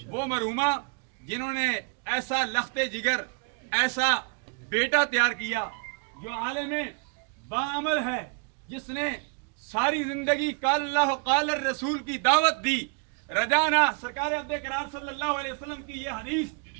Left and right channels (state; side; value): quieter; left; 35.6 dB